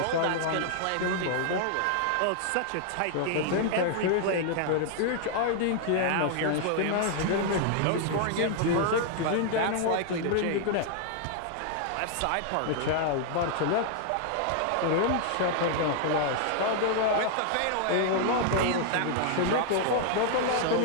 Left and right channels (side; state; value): both; different; correlation 0.00